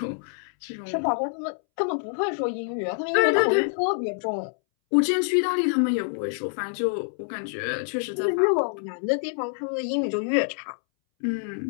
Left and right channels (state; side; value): silent; right; 61 dB below the other